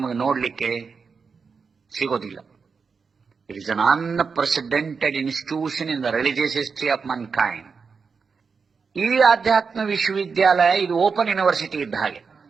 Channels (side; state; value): left; quieter; 5.3 dB